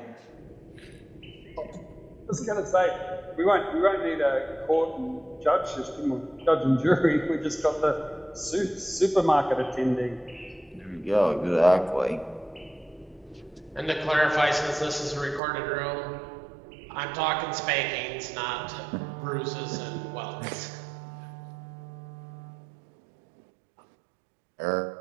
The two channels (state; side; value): drops out; left; at 15.4 s